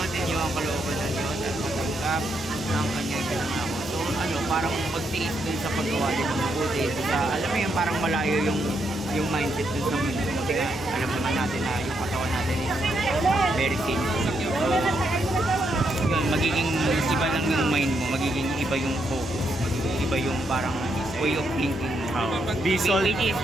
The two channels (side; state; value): both; normal; correlation 0.78